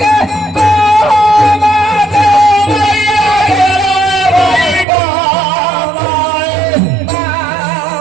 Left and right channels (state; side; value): drops out; left; at 4.9 s